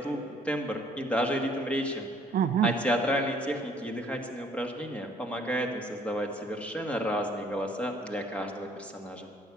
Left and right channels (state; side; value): normal; both; correlation 0.60